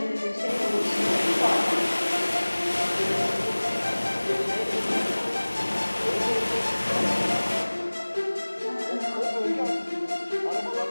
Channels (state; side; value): inverted; both; correlation -1.00